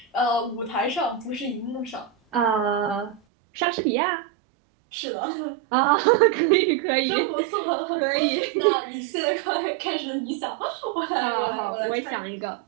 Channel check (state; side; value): drops out; left; at 3.2 s